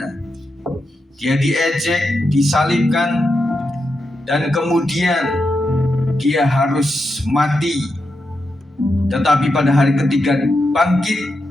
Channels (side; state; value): both; normal; correlation 0.86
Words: Dia diejek, disalibkan, dan kemudian Dia harus mati. Tetapi pada hari ketiga bangkit,